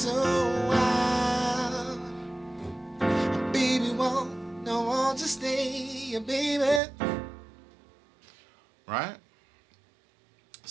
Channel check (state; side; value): drops out; left; at 6.8 s